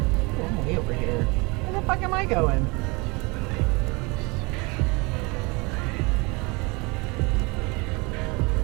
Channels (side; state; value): left; quieter; 27.0 dB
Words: I'm way over here. Where the fuck am I going?